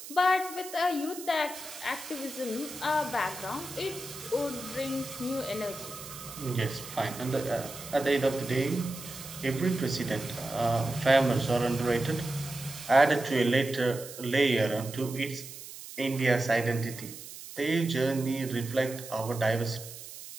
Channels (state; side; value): noise; right; hiss, 13 dB below the sound